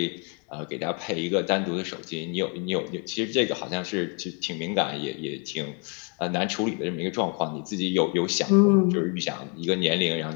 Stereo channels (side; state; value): right; quieter; 37.2 dB